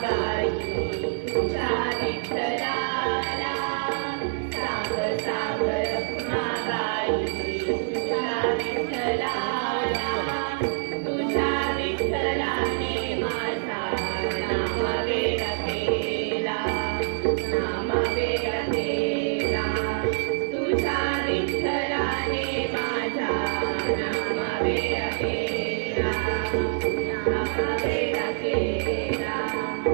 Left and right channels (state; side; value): silent; left; 57 dB below the other